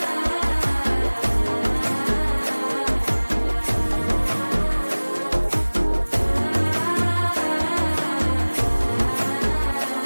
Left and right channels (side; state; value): both; inverted; correlation -1.00